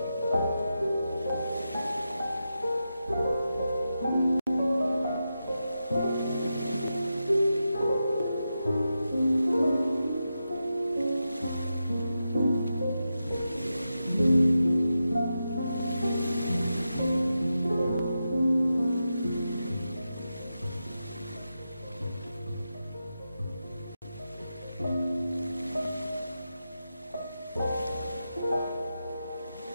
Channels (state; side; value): inverted; both; correlation -0.89